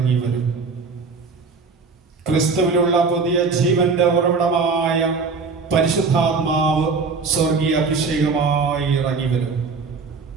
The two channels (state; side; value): quieter; left; 4.7 dB